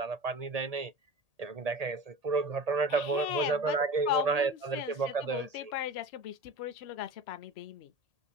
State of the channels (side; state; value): left; late; 1.8 ms